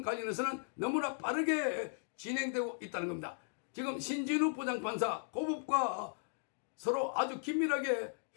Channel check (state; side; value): silent; right; digital silence